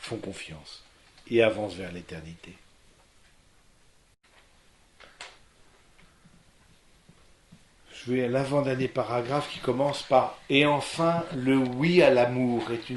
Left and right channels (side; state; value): both; identical; correlation 1.00